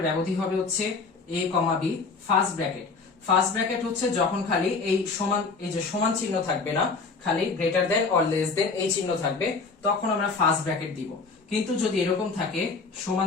ব্যবধি হবে হচ্ছে a, b first bracket. First bracket হচ্ছে যখন খালি এই সমান, এই যে সমান চিহ্ন থাকবে না, খালি greater than or less than এই চিহ্ন থাকবে, তখন আমরা ফার্স্ট ব্র্যাকেট দিব। কিন্তু যদি এরকম থাকে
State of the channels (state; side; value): quieter; right; 4.4 dB